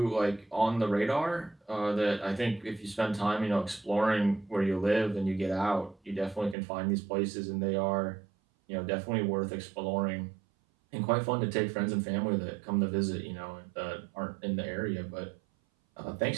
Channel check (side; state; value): left; drops out; at 6.6 s